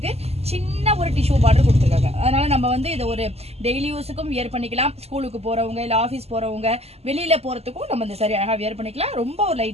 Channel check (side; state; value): left; late; 0.30 ms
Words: சின்ன ஒரு டிஷ்யூ பார்டர் கொடுத்துருக்காங்க. அதனால நம்ம வந்து இதை ஒரு டெய்லி யூஸுக்கும் வியர் பண்ணிக்கலாம். ஸ்கூலுக்கு போறவங்க இல்ல ஆஃபீஸ் போறவங்க வெளியில போறதுக்கும் நம்ம இந்த சாரி அழகா வியர் பண்ணிக்கலாம். ரொம்ப ஒரு